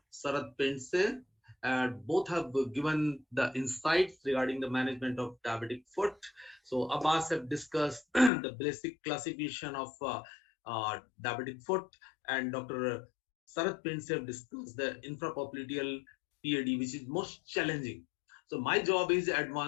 Sarath Pense. Both have given the insights regarding the management of diabetic foot. So Abbas have discussed the basic classification of diabetic foot, and Dr. Sarath Pense have discussed the infrapopliteal PAD, which is most challenging. So my job is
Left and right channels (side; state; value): right; drops out; at 8.3 s